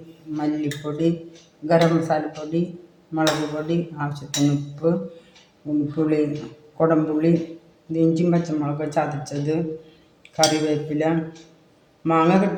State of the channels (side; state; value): both; identical; correlation 1.00